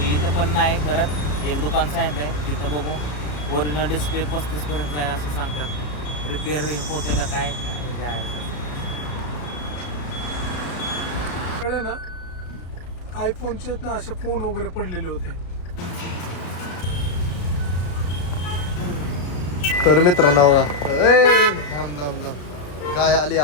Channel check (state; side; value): late; right; 34 ms